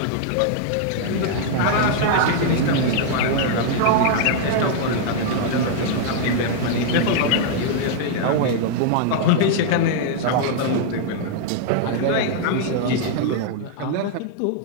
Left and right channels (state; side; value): different; both; correlation -0.01